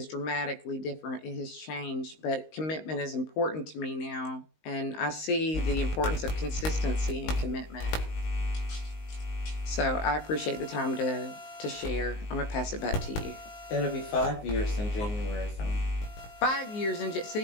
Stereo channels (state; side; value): late; right; 19 ms